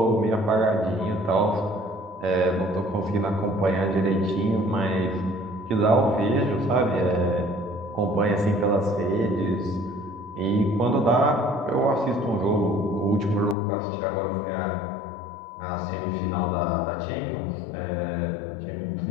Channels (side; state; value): right; drops out; at 13.6 s